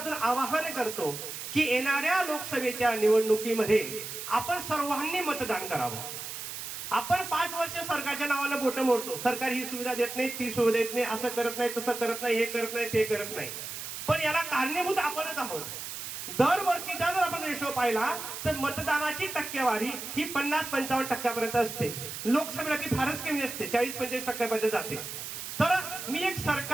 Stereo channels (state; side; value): noise; right; hiss, 8 dB below the sound